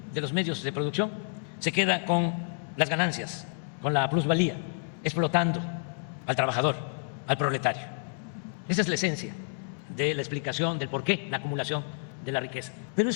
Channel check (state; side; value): silent; right; digital silence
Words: de los medios de producción, se queda con las ganancias, con la plusvalía, explotando al trabajador, al proletario. Esa es la esencia de la explicación del por qué la acumulación de la riqueza. Pero